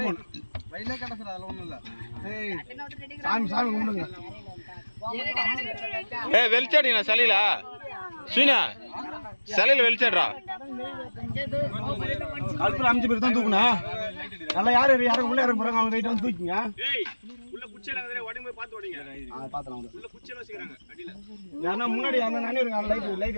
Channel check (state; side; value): inverted; both; correlation -1.00